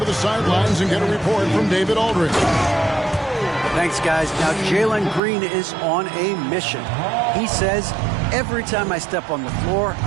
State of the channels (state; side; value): drops out; left; at 5.2 s